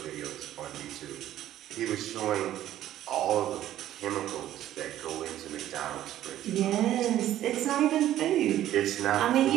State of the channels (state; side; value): quieter; left; 12.6 dB